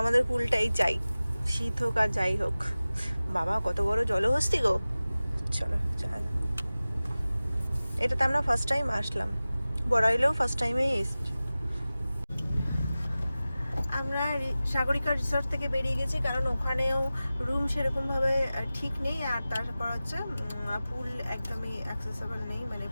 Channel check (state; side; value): inverted; both; correlation -0.97